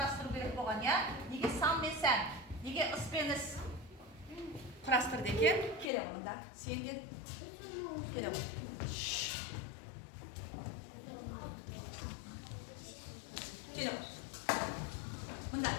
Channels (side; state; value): right; drops out; at 5.9 s